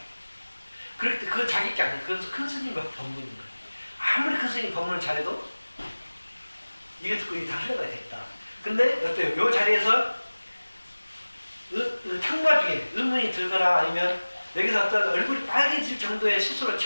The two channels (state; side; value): inverted; both; correlation -1.00